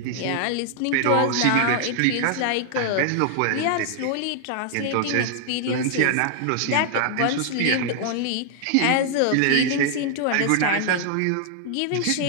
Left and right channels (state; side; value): different; both; correlation 0.00